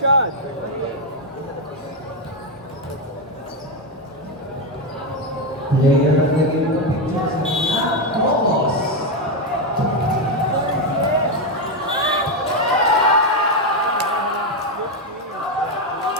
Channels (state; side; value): normal; both; correlation 0.07